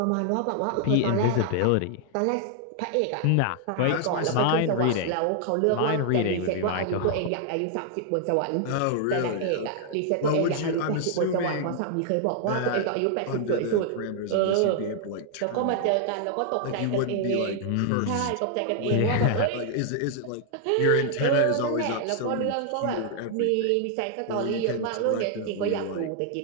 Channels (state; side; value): different; both; correlation 0.00